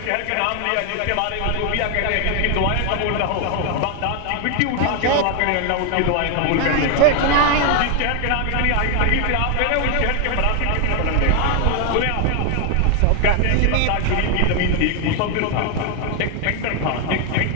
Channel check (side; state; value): both; different; correlation 0.00